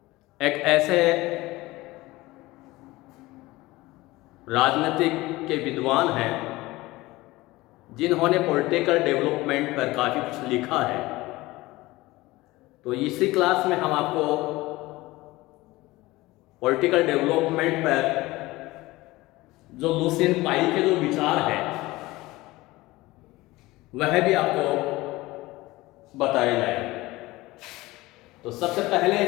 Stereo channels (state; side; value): quieter; right; 19.6 dB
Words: एक ऐसे राजनीतिक के विद्वान हैं जिन्होंने पॉलिटिकल डेवलपमेंट पर काफ़ी कुछ लिखा है। तो इसी क्लास में हम आपको पॉलिटिकल डेवलपमेंट पर जो लुसियन पाई के जो विचार है वह भी आपको बताए जाएंगे। तो सबसे पहले